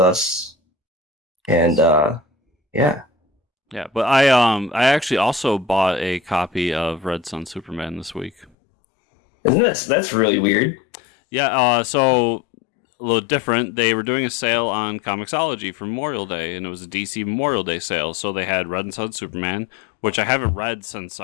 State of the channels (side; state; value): right; drops out; at 8.5 s